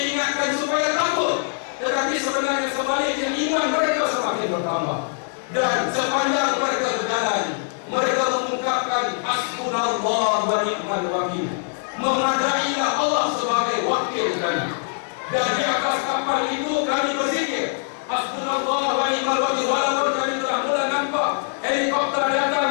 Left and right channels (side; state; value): right; silent; 64 dB below the other